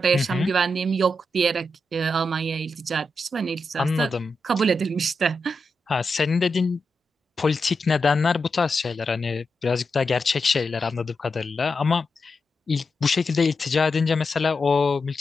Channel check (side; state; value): both; normal; correlation 0.87